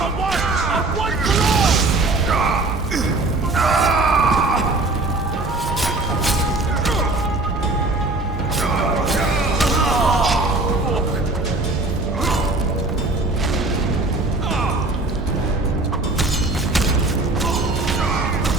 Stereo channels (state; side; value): quieter; left; 3.0 dB